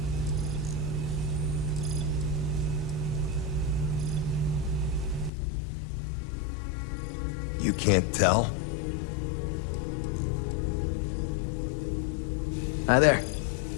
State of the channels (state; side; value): drops out; right; at 5.3 s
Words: You can't tell? Hi there.